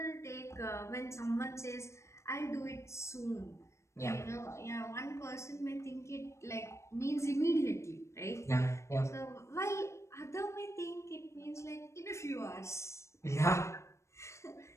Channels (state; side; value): late; right; 0.14 ms